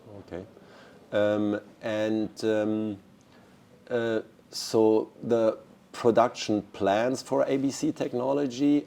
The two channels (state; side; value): identical; both; correlation 1.00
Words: Okay, so the production plans for ABC technology